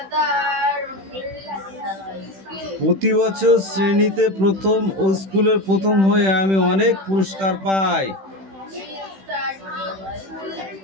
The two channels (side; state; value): left; late; 16 ms